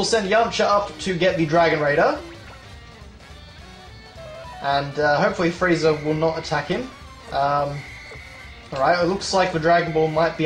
send Yamcha up to get the Dragon Raider. And hopefully Frieza will not attack him. Alright, it looks like the Dragon Ball might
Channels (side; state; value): both; identical; correlation 1.00